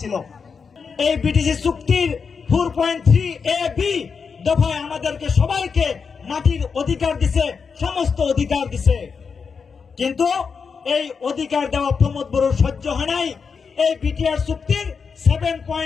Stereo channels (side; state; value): right; quieter; 5.7 dB